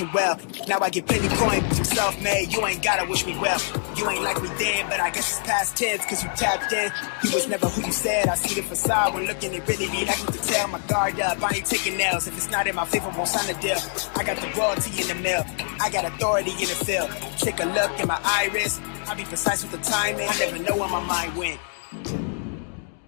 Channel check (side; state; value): right; silent; 55 dB below the other